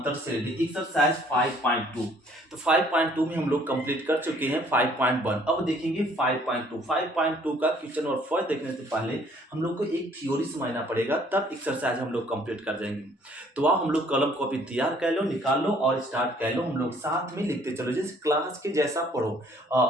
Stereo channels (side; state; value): both; normal; correlation 0.60